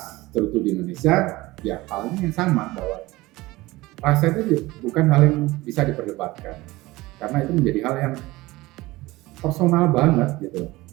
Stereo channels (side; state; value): left; quieter; 19.8 dB